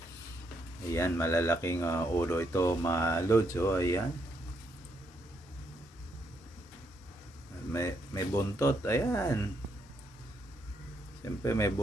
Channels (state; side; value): normal; both; correlation 0.76